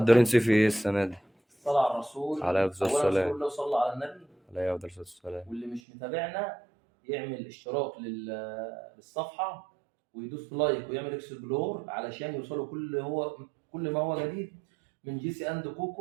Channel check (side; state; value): left; drops out; at 5.8 s